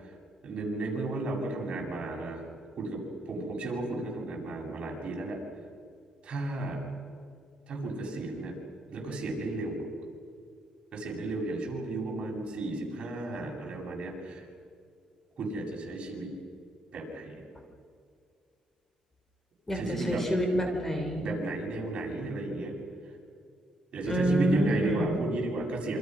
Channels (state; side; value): normal; both; correlation 0.74